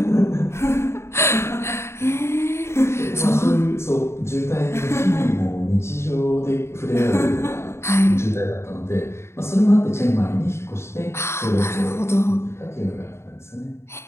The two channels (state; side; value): late; right; 0.13 ms